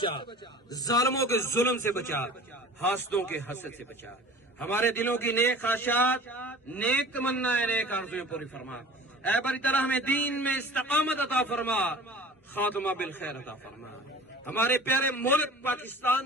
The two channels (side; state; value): both; normal; correlation 0.41